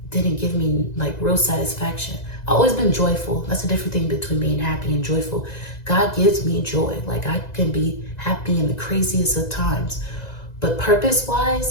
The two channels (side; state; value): right; late; 2.0 ms